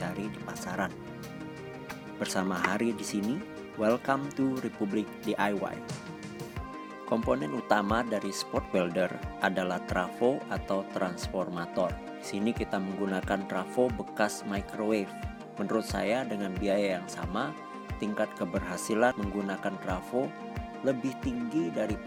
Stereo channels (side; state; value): both; identical; correlation 1.00